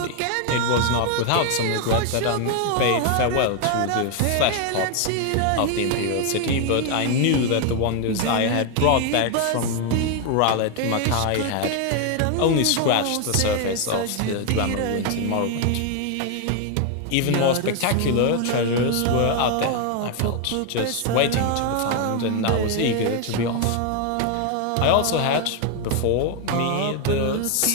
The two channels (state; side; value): different; both; correlation 0.01